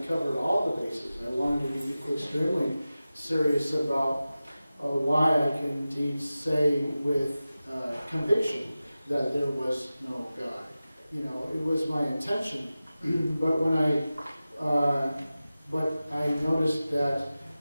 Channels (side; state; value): both; inverted; correlation -0.95